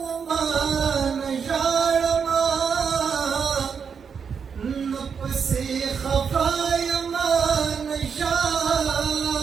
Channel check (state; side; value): quieter; left; 6.5 dB